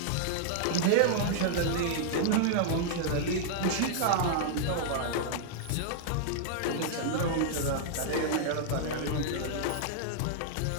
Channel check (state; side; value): different; both; correlation -0.01